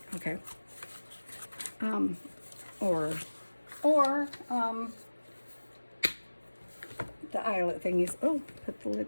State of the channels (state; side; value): inverted; both; correlation -1.00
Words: Okay. Or the eyelet thingies. Oh, put the